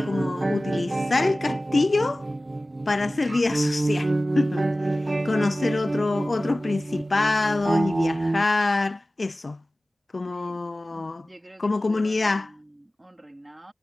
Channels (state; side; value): normal; both; correlation 0.97